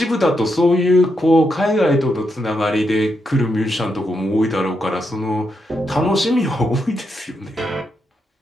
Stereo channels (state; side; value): normal; both; correlation 0.82